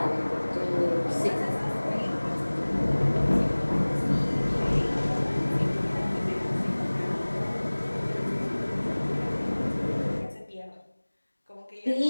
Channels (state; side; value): inverted; both; correlation -1.00